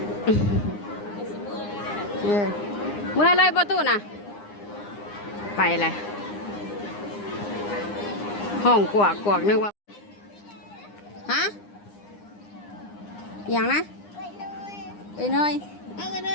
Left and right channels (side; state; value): right; late; 9.8 ms